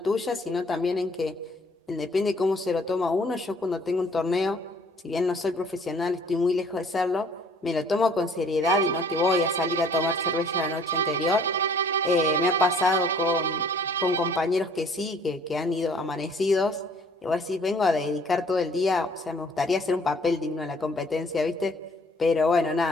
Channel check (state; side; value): normal; both; correlation 0.57